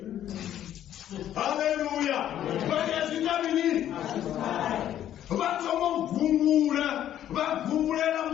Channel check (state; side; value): quieter; right; 11.3 dB